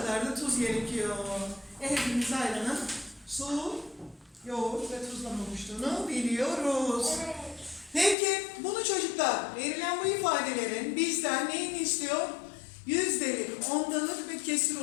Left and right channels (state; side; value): drops out; right; at 8.2 s